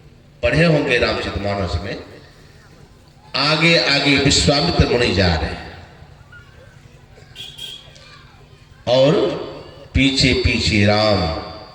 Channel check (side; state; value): both; identical; correlation 1.00